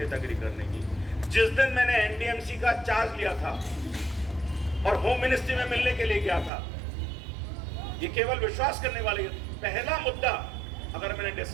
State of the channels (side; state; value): left; drops out; at 6.5 s